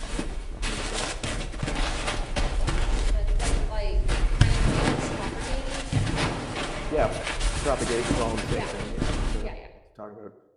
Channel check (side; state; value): both; identical; correlation 1.00